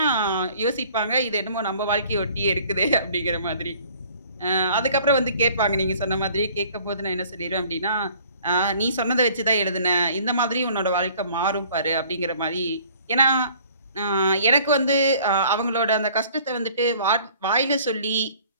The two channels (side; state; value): both; inverted; correlation -0.53